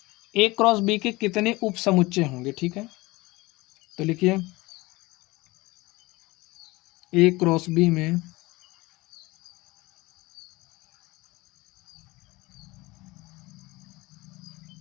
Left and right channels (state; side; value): quieter; right; 21.7 dB